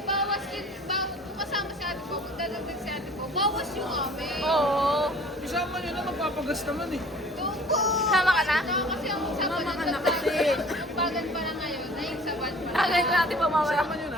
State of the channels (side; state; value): both; normal; correlation 0.48